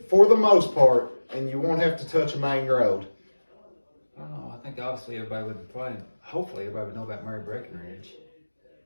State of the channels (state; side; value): inverted; both; correlation -1.00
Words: for the most part, and you won't have to touch a main road. I don't know. I think obviously hopefully everybody would know about Mary Breckenridge